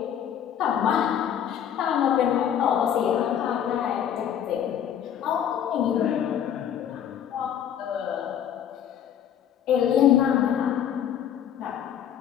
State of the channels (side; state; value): right; quieter; 9.5 dB